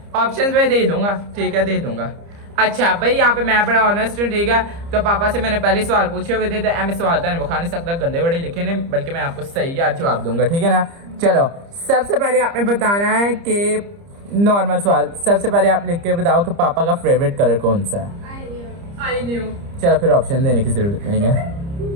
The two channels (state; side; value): late; left; 30 ms